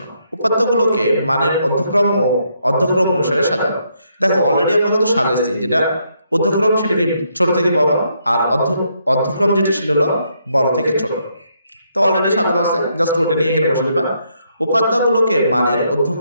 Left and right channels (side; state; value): both; inverted; correlation -0.75